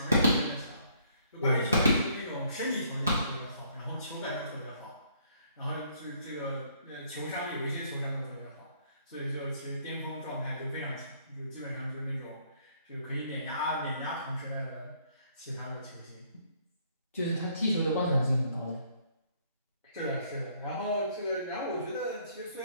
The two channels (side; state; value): both; inverted; correlation -0.65